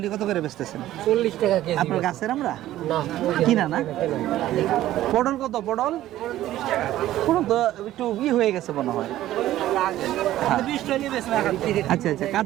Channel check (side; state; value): left; quieter; 14.0 dB